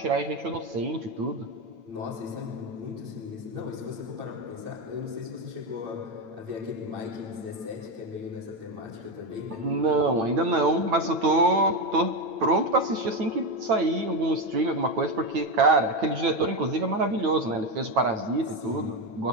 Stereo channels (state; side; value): late; left; 9.0 ms